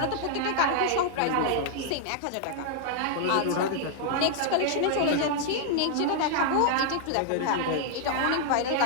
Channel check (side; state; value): both; different; correlation 0.00